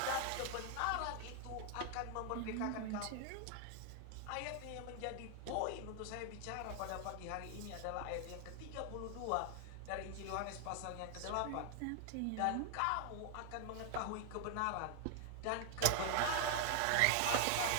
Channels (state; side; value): different; both; correlation 0.00